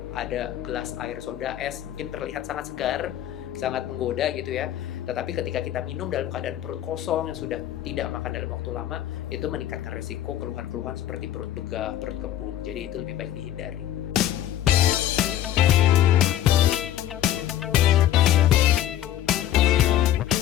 ada gelas air soda es, mungkin terlihat sangat segar, sangat menggoda gitu ya. Tetapi ketika kita minum dalam keadaan perut kosong yang sudah tidak makan dalam waktu lama, itu meningkatkan risiko keluhan-keluhan seperti perut begah, perut kembung. Jadi itu lebih baik dihindari.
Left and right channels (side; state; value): right; quieter; 12.0 dB